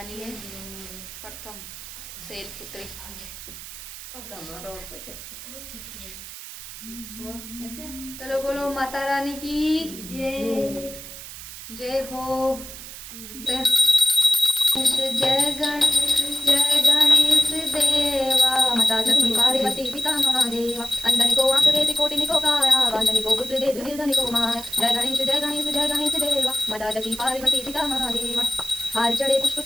है, प्रथम शैलपुत्री। चलो बोलो माता रानी की जय, जय हो। जय गणेश देवा, माता सती पार्वती पिता महादेवा, अंधनि को आंख दे कोटिनि को काया, वांझनि को पुत्र दे निर्धनि को माया। जय गणेश जय गणेश जय गणेश देवा, माता सती पार्वती पिता महादेवा। हार चढ़े पुष्प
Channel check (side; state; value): right; noise; hiss, 13 dB below the sound